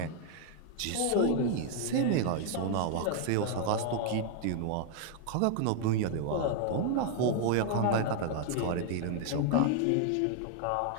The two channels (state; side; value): different; both; correlation 0.00